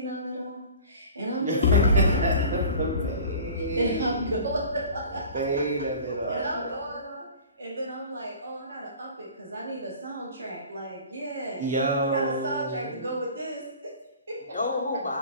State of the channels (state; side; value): inverted; both; correlation -0.42